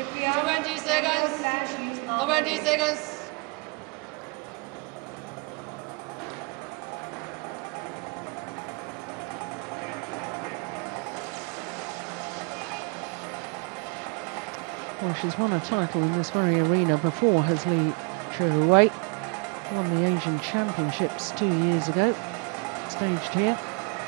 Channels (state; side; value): quieter; left; 32.4 dB